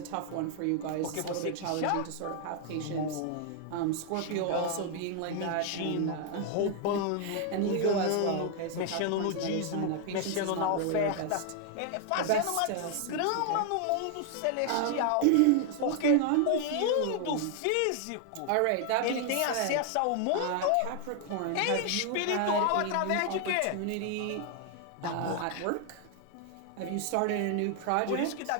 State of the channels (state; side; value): different; both; correlation 0.00